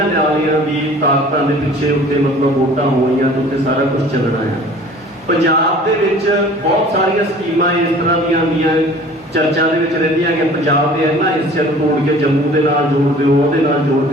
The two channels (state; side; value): normal; both; correlation 0.47